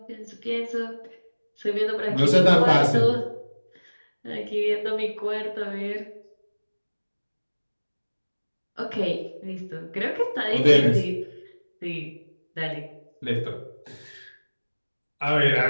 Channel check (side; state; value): both; inverted; correlation -1.00